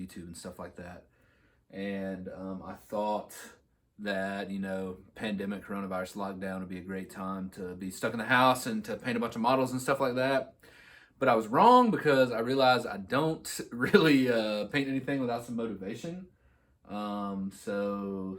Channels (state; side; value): identical; both; correlation 1.00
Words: and stuff like that. And I thought that, pandemic, coronavirus, lockdown would be a great time to be stuck in the house and to paint a bunch of models and stuff like that. But I was wrong because I realized I don't really paint anything without some motivation. So